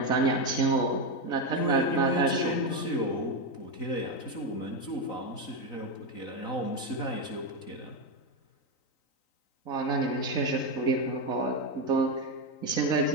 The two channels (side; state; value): right; late; 3.9 ms